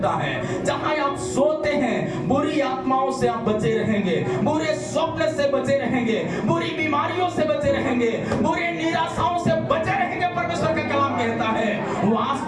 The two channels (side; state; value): both; identical; correlation 1.00